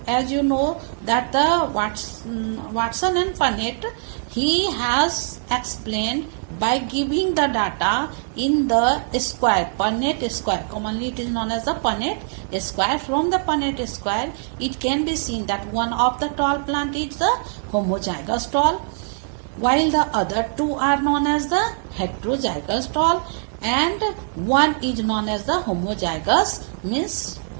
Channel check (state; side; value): silent; left; digital silence